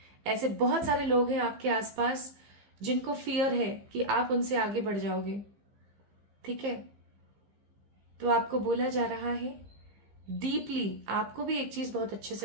ऐसे बहुत सारे लोग हैं आपके आसपास जिनको फियर है कि आप उनसे आगे बढ़ जाओगे। ठीक है, तो आपको बोला जा रहा है डीपली, आपको भी एक चीज बहुत अच्छे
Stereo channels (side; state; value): left; late; 15 ms